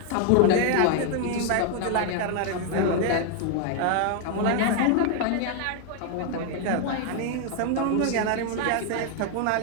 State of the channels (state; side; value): different; both; correlation 0.01